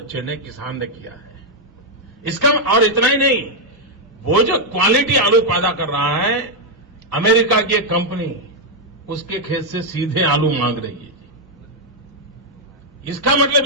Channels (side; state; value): both; normal; correlation -0.01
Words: ने, किसान ने किया है। इसका और इतना ही नहीं, वो जो क्वालिटी आलू पैदा कर रहा है, अमेरिका की एक कंपनी उसके खेत से सीधे आलू मांग रही है। इसका मतलब